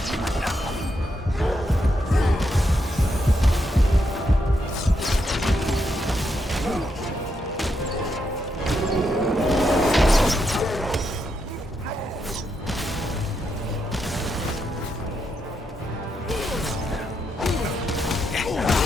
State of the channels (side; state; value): both; normal; correlation 0.81